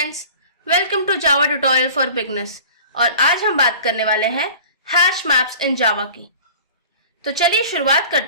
welcome to Java tutorial for beginners और आज हम बात करने वाले हैं हैश मैप्स इन जावा की। तो चलिए शुरुआत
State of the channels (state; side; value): inverted; both; correlation -0.42